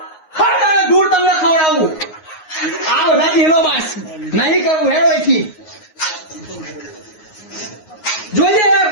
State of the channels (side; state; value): right; late; 9.5 ms